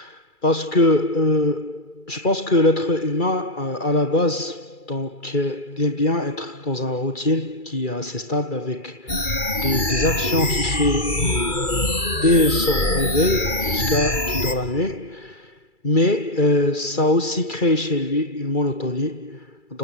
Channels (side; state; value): right; late; 2.3 ms